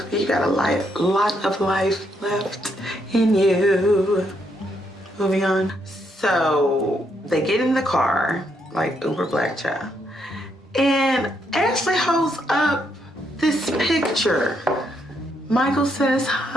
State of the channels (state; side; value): normal; both; correlation 0.76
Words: you got a lot of life left in you. Moving on. So they get in the car, like uber black child. And Ashley holds up this picture. Michael says